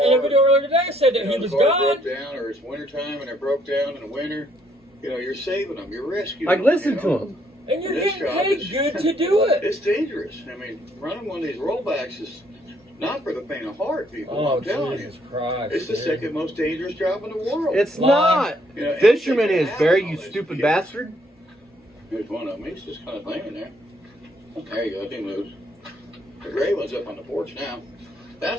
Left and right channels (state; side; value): normal; both; correlation 0.68